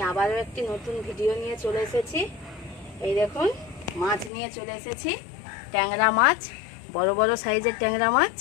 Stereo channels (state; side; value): drops out; right; at 4.3 s